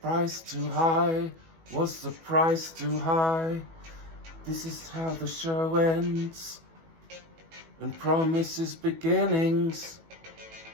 too high? Was the price too high? This is how the show ends and promises beginnings.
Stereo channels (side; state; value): left; late; 18 ms